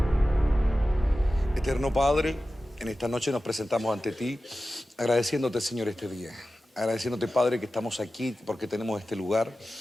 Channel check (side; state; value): both; normal; correlation 0.94